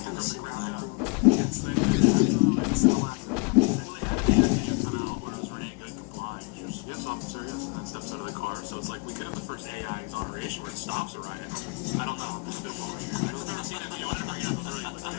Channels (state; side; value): quieter; right; 32.2 dB